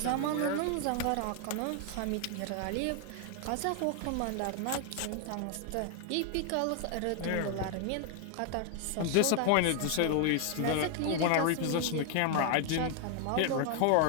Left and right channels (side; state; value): both; different; correlation 0.00